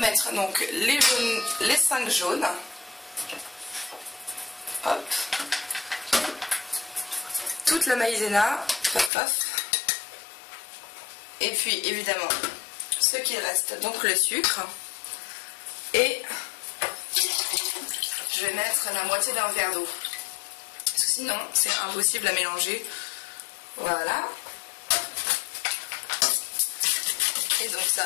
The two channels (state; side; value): drops out; right; at 9.1 s